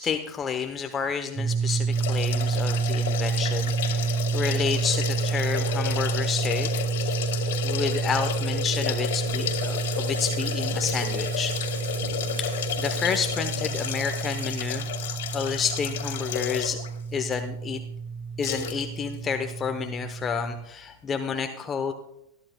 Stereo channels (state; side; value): normal; both; correlation 0.51